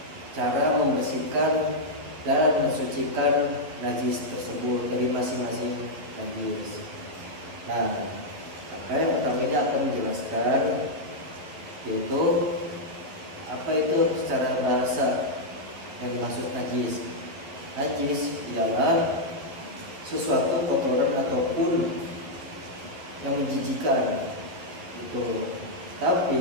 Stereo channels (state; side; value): late; left; 12 ms